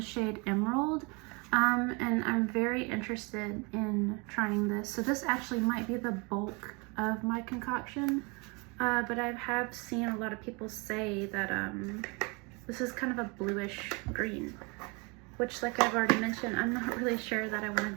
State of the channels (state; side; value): quieter; left; 30.1 dB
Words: shade Emerald, and I'm very interested in trying this. So this actually might be the bulk of my concoction, but I have seen a lot of people say that this is kind of a bluish green, which, like I've already mentioned, I'm not really sure that I want to